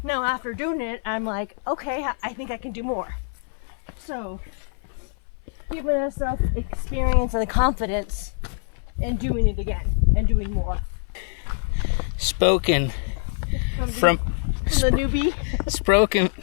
Now after doing it, I'm like, okay, I think I can do more. So giving ourselves experience and the confidence in doing it again and doing more. Spoken from the newbie.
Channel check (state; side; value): silent; right; 58 dB below the other